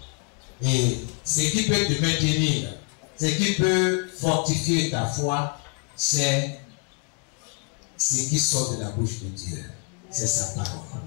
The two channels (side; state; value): right; quieter; 35.2 dB